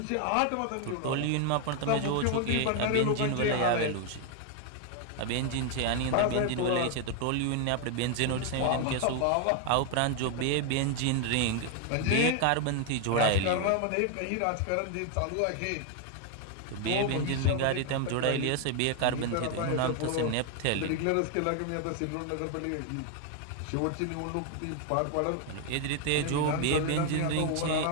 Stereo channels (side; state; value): both; different; correlation 0.00